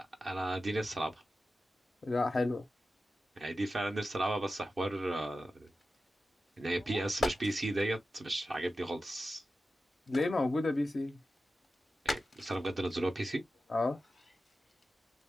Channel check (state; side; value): normal; both; correlation 0.92